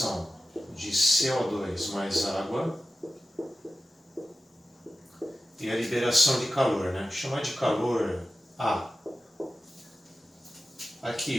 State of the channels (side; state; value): both; normal; correlation 0.93